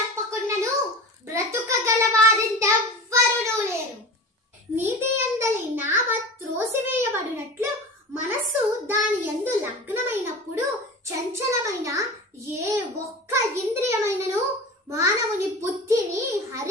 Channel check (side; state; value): both; normal; correlation 0.33